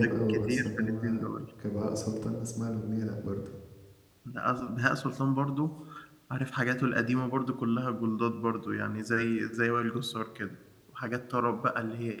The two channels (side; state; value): both; identical; correlation 1.00